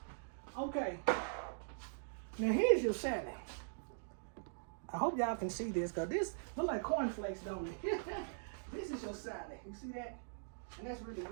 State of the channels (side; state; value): left; silent; digital silence